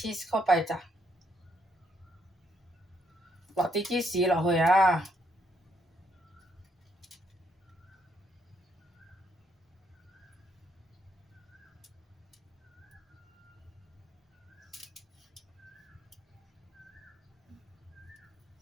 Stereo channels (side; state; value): both; normal; correlation 0.73